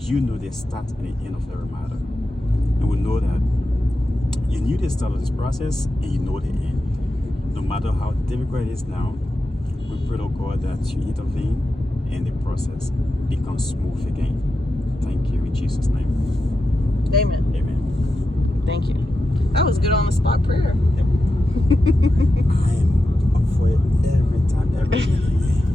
You know the start and the end of every matter. And we know that you knew the start of this process and you know the end. No matter how difficult it is now, we pray, Lord God, that you intervene and the process becomes smooth again. Thank you in Jesus' name. Amen. Amen. Thank you. That was good on the spot prayer. Yep. I am up for it every time, every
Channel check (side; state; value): both; normal; correlation 0.90